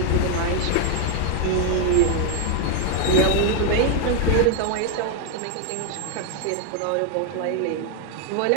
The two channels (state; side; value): different; both; correlation 0.01